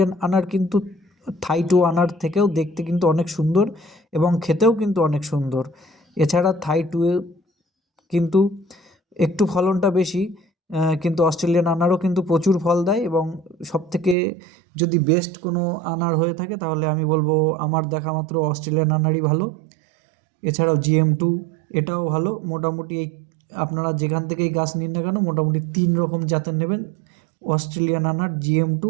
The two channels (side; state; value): left; drops out; at 14.2 s